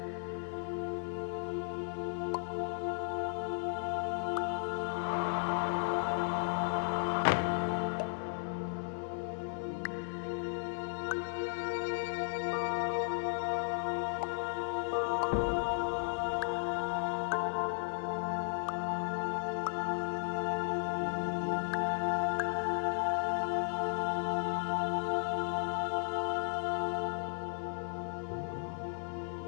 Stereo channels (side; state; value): right; silent; digital silence